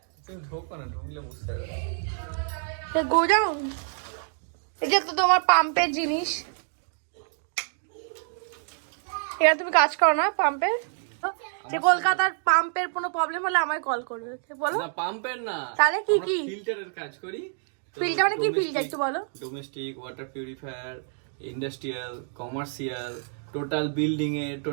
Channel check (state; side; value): silent; left; 60 dB below the other